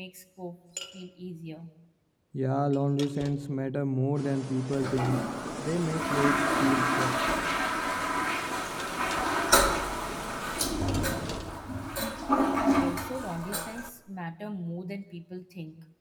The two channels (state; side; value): identical; both; correlation 1.00